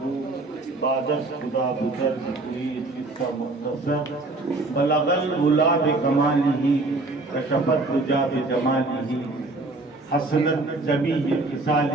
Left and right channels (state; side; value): quieter; left; 3.1 dB